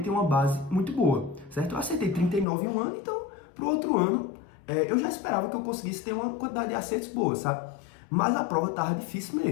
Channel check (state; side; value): drops out; right; at 2.5 s